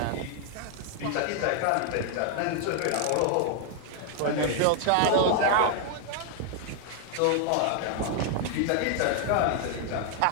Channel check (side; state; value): both; different; correlation 0.00